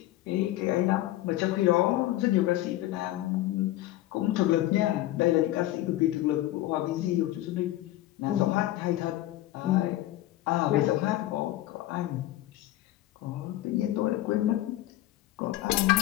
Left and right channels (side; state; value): right; quieter; 15.4 dB